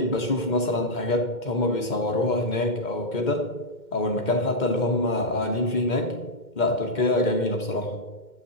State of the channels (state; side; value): late; right; 2.1 ms